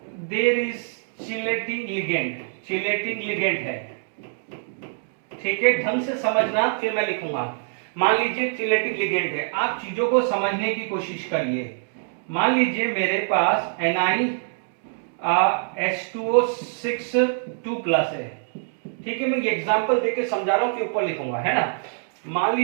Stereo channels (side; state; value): left; silent; digital silence